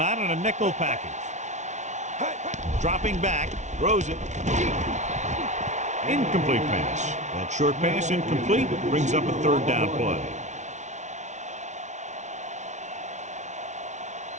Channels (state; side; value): late; left; 0.34 ms